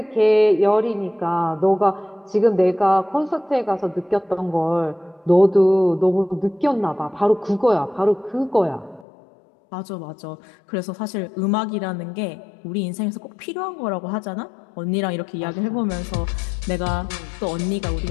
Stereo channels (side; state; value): right; drops out; at 9.1 s